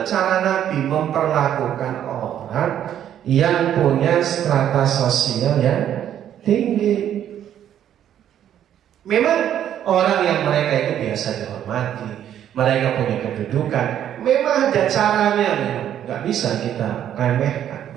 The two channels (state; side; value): quieter; left; 10.4 dB